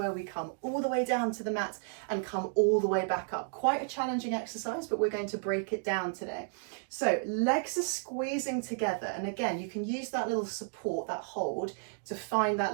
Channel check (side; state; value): left; silent; digital silence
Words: we come all the way down to the mat and come all the way back up. Quite a challenging exercise, but we're going to break it down today. So legs are squeezing together. And again, you can use that little support, that hold, to find that